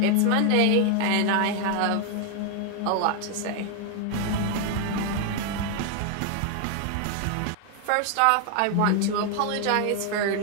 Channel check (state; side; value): different; both; correlation 0.01